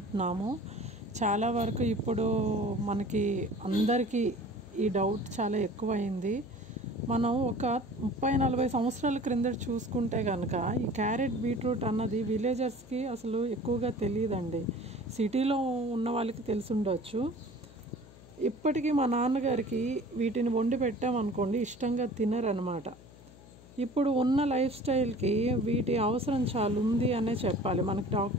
చాలా వరకు ఇప్పుడు మనకి అందరికీ ఈ డౌట్ చాలా ఎక్కువైంది. మనం ఒక 30-40 సంవత్సరాల క్రిందట చూసుకుంటే కనుక ఈ క్యారెట్ బీట్రూట్ అన్నది విలేజర్స్కి అసలు ఎక్కువగా తెలియదండి. సిటీలో ఉన్న వాళ్ళకి తెలిసి ఉండొచ్చు. ఇప్పటికీ మా నాన్నగారికి వీటిని వండి పెట్టామనుకోండి ఇష్టంగా తినరనమాట. ఇప్పుడు ఉన్న లైఫ్ స్టైల్కి వీటి అవసరం చాలా ఉంది అనే చెప్పాలి. మనకి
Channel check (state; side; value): noise; left; hum, 21 dB below the sound